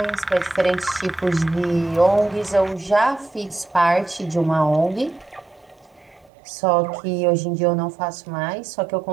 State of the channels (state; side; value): drops out; left; at 6.3 s